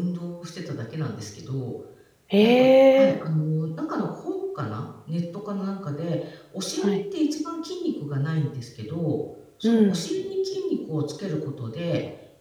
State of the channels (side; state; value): both; identical; correlation 1.00